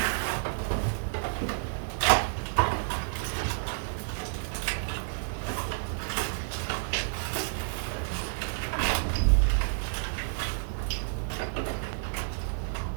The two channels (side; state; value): left; silent; 58 dB below the other